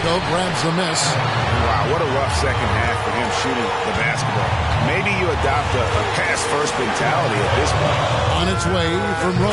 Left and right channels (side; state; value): both; identical; correlation 1.00